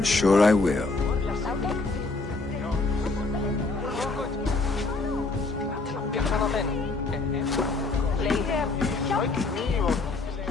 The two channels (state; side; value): quieter; right; 3.6 dB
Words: sure I will.